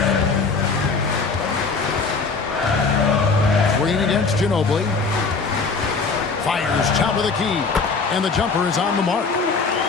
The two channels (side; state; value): right; quieter; 4.5 dB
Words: Green against Ginobili. Fires top of the key. And the jumper is on the mark.